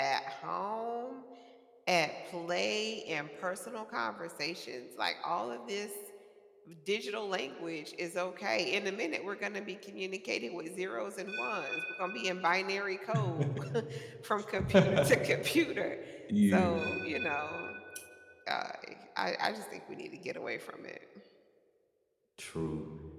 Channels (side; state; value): both; identical; correlation 1.00